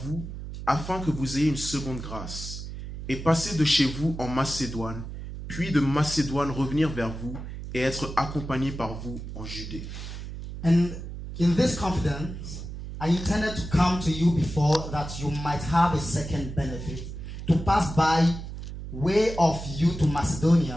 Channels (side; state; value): right; noise; hum, 9 dB below the sound